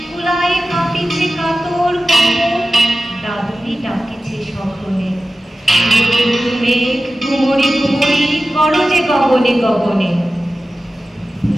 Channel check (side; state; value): both; normal; correlation 0.94